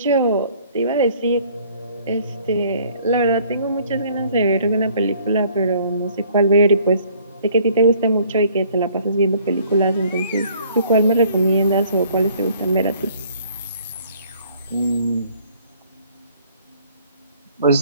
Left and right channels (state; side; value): inverted; both; correlation -0.59